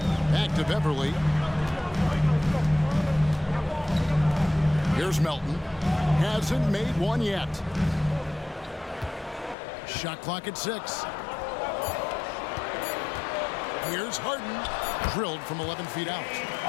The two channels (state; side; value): drops out; right; at 9.6 s